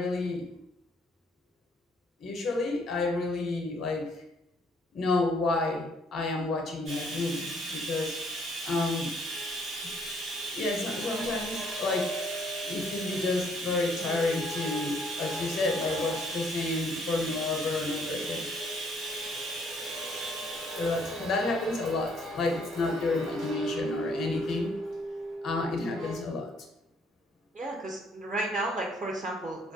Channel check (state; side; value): normal; both; correlation 0.65